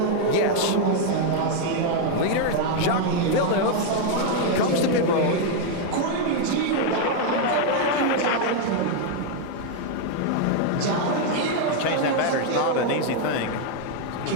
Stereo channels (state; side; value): different; both; correlation 0.00